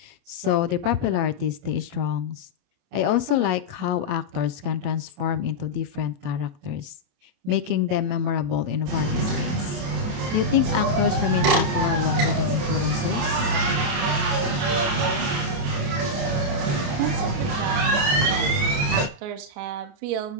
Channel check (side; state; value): left; late; 28 ms